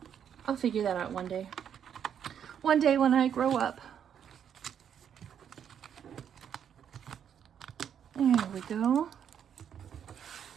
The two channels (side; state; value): left; quieter; 8.6 dB